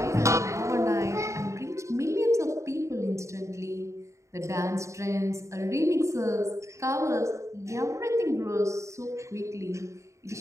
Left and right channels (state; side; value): late; left; 0.14 ms